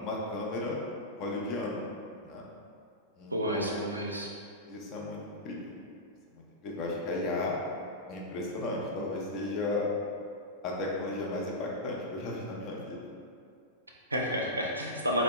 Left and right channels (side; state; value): both; normal; correlation -0.14